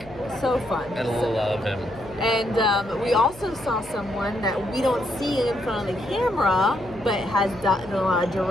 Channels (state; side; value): noise; left; hum, 21 dB below the sound